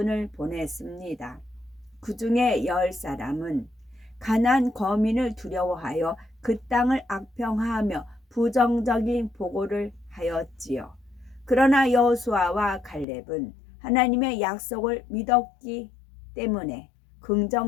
보냈습니다. 그 중에 10사람은 가나안 거민을 두려워하여 그 땅을 악평하며 부정적인 보고를 하였지요. 그러나 여호수아와 갈렙은 하나님의 약속을 믿었기 때문에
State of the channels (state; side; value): drops out; right; at 13.1 s